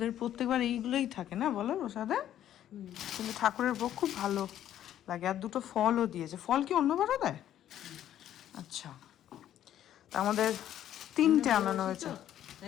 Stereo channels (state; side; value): quieter; right; 11.4 dB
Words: প্রত্যেকবার এইগুলোই থাকে না বলো প্রসাদে, কিন্তু ঠাকুরের ভোগ খুব ভালো লাগে। আর 2টো ফলও দিয়েছে। ফল কি অন্যবারও দেয়? আচ্ছা, তা আমাদের 3টে আনানো হয়েছে।